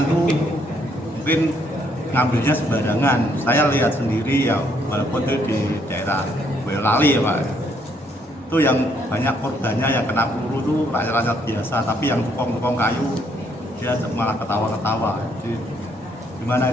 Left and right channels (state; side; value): normal; both; correlation 0.70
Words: tuh mungkin ngambilnya sembarangan. Saya lihat sendiri ya, walaupun itu di daerah Boyolali ya Pak. Itu yang banyak korbannya yang kena peluru tuh rakyat-rakyat biasa, tapi yang tukang-tukang kayu dia malah ketawa-ketawa. Jadi gimana